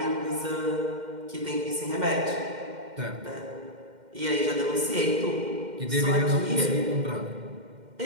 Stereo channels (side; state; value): left; late; 2.1 ms